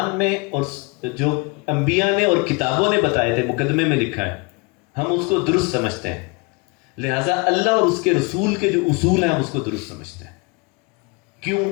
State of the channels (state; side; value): quieter; right; 28.8 dB